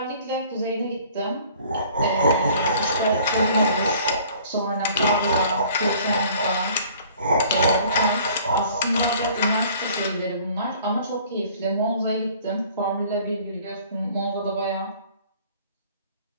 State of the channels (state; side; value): inverted; both; correlation -0.53